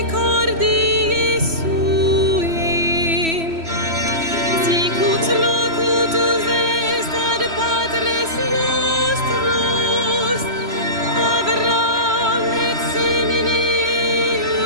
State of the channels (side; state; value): left; late; 3.1 ms